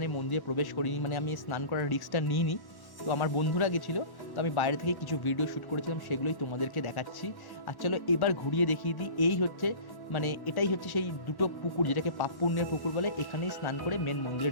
মন্দিরে প্রবেশ করিনি, মানে আমি স্নান করার রিস্কটা নিইনি। তো আমার বন্ধুরা গেছিলো, তো আমি বাইরে থেকে কিছু ভিডিও শ্যুট করেছিলাম, সেগুলোই তোমাদেরকে দেখাচ্ছি। আর চলো এবার ঘুরিয়ে দেখিয়ে দিই। এই হচ্ছে মানে এটাই হচ্ছে সেই দুটো পুকুর, যেটাকে পাপ পুণ্যের পুকুর বলে, এখানেই স্নান করে মেন মন্দিরে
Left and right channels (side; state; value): right; late; 1.1 ms